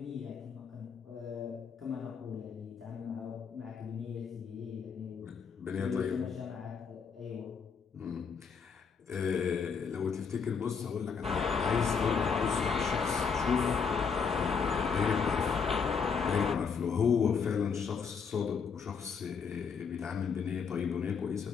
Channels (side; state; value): right; quieter; 6.0 dB